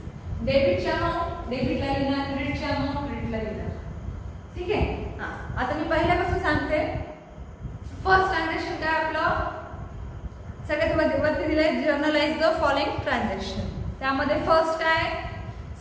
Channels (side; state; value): both; identical; correlation 1.00